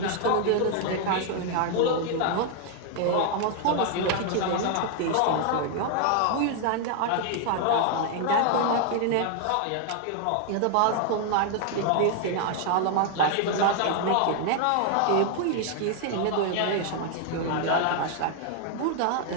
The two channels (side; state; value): both; different; correlation 0.00